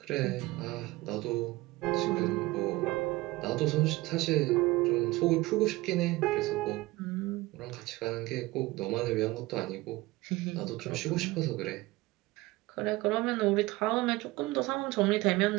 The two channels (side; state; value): left; quieter; 20.0 dB